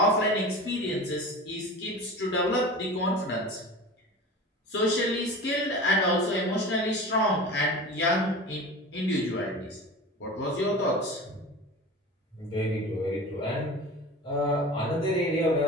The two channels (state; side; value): normal; both; correlation 0.34